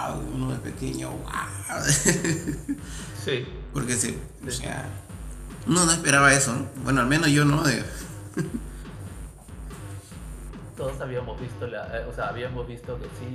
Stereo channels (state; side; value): identical; both; correlation 1.00